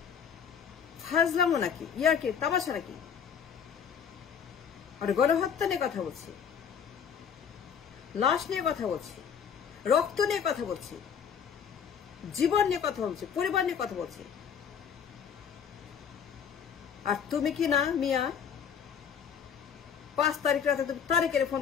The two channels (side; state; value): right; quieter; 7.5 dB